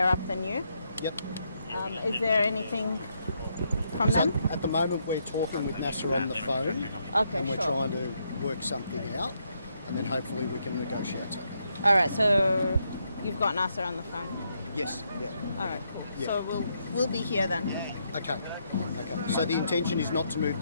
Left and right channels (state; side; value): inverted; both; correlation -0.77